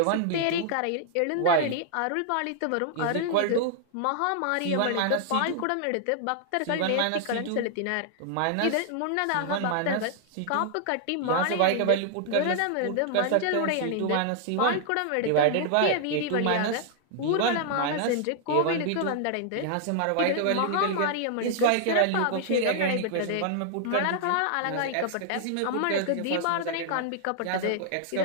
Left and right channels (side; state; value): both; different; correlation 0.00